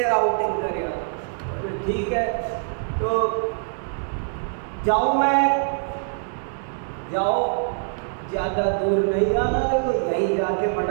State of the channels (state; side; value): silent; left; digital silence